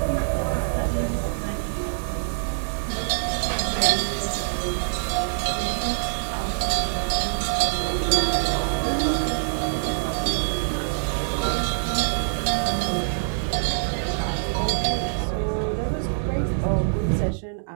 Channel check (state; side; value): silent; left; digital silence